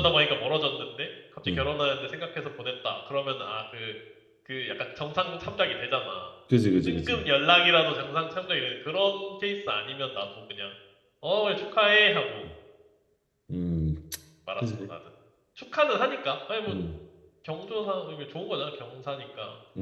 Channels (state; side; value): identical; both; correlation 1.00